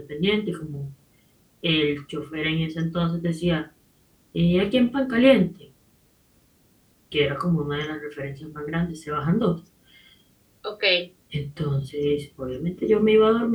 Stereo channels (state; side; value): identical; both; correlation 1.00